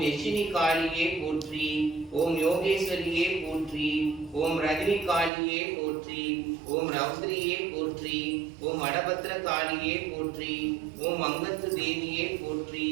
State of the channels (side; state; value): left; drops out; at 5.3 s